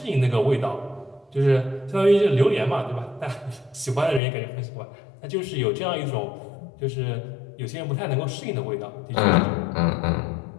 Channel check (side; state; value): right; drops out; at 4.2 s